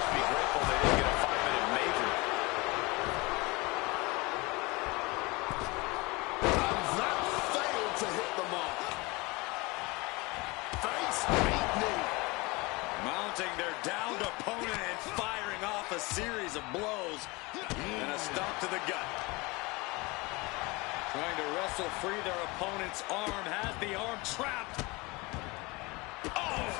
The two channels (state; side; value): quieter; right; 24.8 dB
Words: be grateful they didn't get a 5-minute major. To hit the mark. Face beat knee. Mounting their downed opponent and firing off a series of blows. And a stomp to the gut. Trying to wrestle free their opponent's arm. Has the arm trapped. Oh,